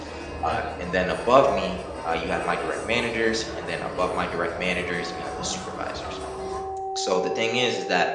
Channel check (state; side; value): identical; both; correlation 1.00